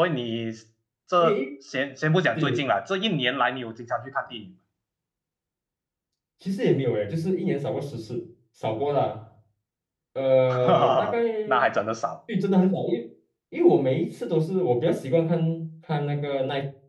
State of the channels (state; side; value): identical; both; correlation 1.00